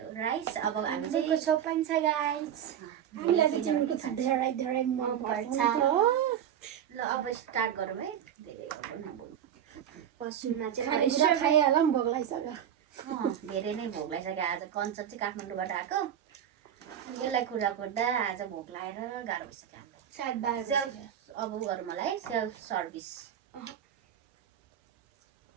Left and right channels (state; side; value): quieter; left; 9.6 dB